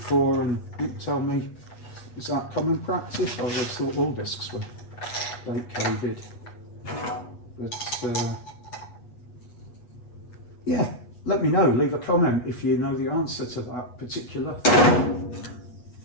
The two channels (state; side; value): late; right; 8.2 ms